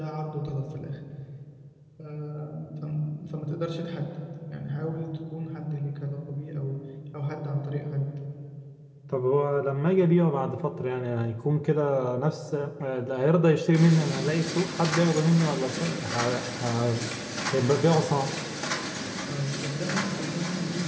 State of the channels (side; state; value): both; identical; correlation 1.00